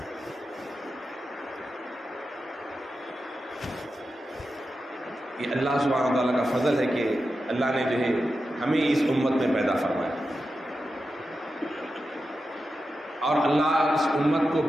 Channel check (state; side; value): normal; both; correlation 0.90